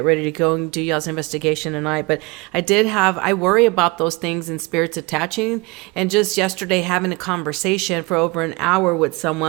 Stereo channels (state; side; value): quieter; left; 25.6 dB